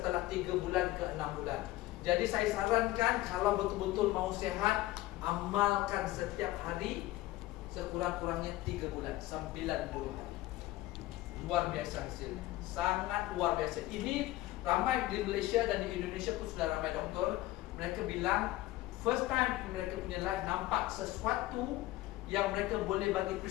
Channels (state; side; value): quieter; right; 17.1 dB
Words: 3 bulan ke 6 bulan. Jadi saya sarankan kalau betul-betul mau sehat, amalkan setiap hari sekurang-kurangnya 3 bulan, 90 hari. Luar biasa hasilnya, sangat luar biasa. Ini ramai di Malaysia dan di Indonesia pun sudah ramai doktor. Mereka bilang first time mereka punya life nampak sesuatu yang mereka boleh bagi